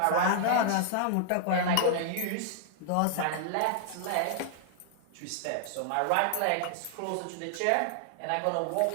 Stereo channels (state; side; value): different; both; correlation -0.01